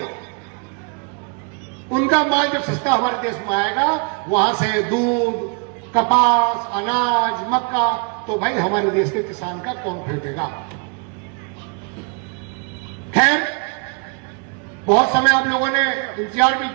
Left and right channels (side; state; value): left; quieter; 37.2 dB